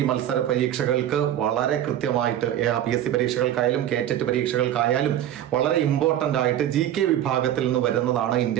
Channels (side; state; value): left; quieter; 11.5 dB